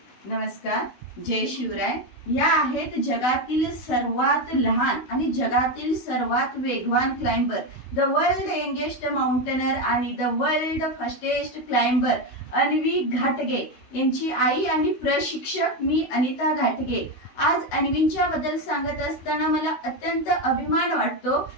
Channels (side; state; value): right; late; 16 ms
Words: नमस्कार. जय शिवराय. या आहेत जगातील सर्वात लहान आणि जगातील सर्वात वेगवान climber, the world youngest mountaineer आणि the world fastest climber Anvi घाटगे यांची आई आणि प्रशिक्षक मी अनिता घाटगे. आज अन्वींच्या बद्दल सांगत असताना मला अत्यंत अभिमान वाटतो